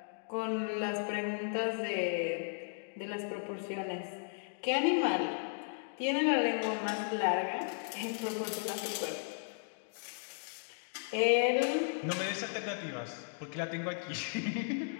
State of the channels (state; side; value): silent; right; digital silence